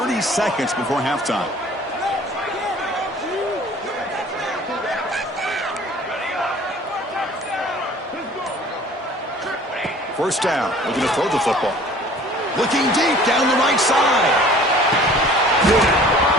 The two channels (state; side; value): normal; both; correlation 0.49